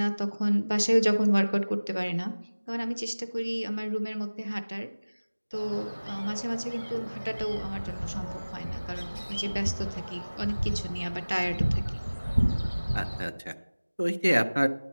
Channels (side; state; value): both; inverted; correlation -1.00